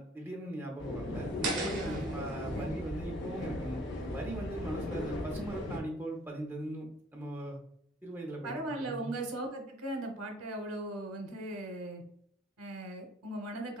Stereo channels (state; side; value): normal; both; correlation 0.56